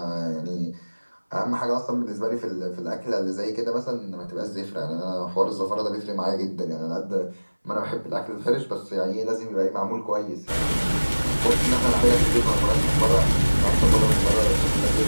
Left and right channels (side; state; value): both; inverted; correlation -1.00